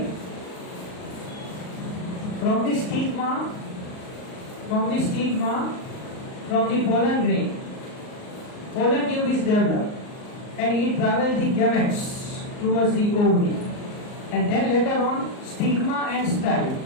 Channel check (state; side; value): late; right; 38 ms